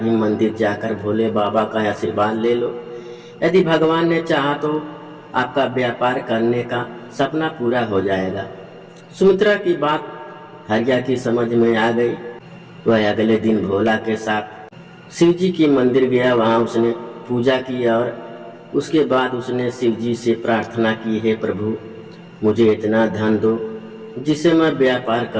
मंदिर जाकर भोले बाबा का आशीर्वाद ले लो। यदि भगवान ने चाहा तो आपका व्यापार करने का सपना पूरा हो जाएगा। सुमित्रा की बात हरिया की समझ में आ गई। वह अगले दिन भोला के साथ शिव जी की मंदिर गया। वहाँ उसने पूजा की और उसके बाद उसने शिव जी से प्रार्थना की, हे प्रभु, मुझे इतना धन दो जिसे मैं व्यापार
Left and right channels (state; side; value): identical; both; correlation 1.00